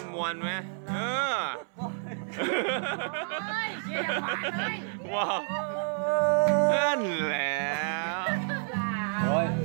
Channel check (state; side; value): silent; left; 58 dB below the other